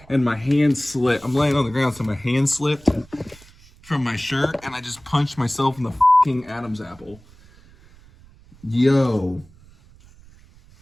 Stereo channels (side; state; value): right; noise; rumble, 25 dB below the sound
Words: and my hand slipped. I'm laying on the ground, so my hand slipped from my shirt, and I just punched myself in the fucking Adam's apple. Yo.